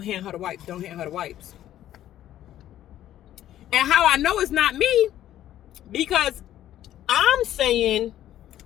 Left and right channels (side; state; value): right; quieter; 12.4 dB